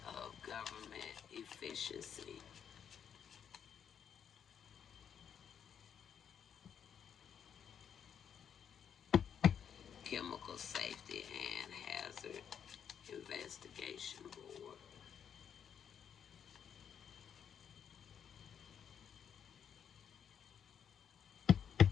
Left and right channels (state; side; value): quieter; right; 8.1 dB